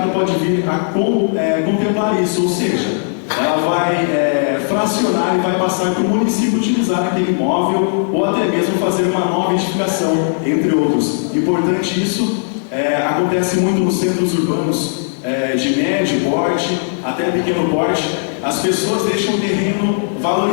pode vir a contemplar isso, ou seja, ela vai fracionar e vai passar para o município utilizar aquele imóvel ou até mesmo fazer uma nova edificação, entre outros. Importante isso, acontece muito nos centros urbanos de médio porte até pequeno porte. As pessoas deixam o terreno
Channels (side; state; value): right; silent; digital silence